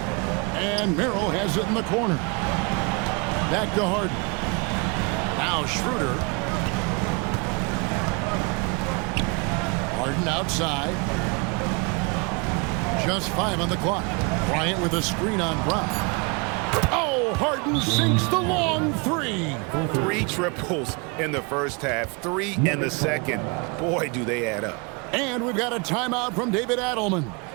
And Merrill has it in the corner. Back to Harden. Now Schroeder. Harden outside. Just 5 on the clock. Bryant with a screen on Brown. Oh, Harden sinks the long 3. 3 triples in the first half, 3 in the second. Boy, do they add up. And we've got a timeout from David Adelman.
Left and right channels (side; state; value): left; quieter; 30.8 dB